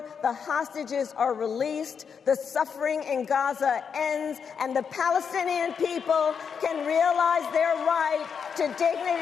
the hostages are released, the suffering in Gaza ends, and the Palestinian people can realize their right to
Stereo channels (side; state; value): right; quieter; 6.6 dB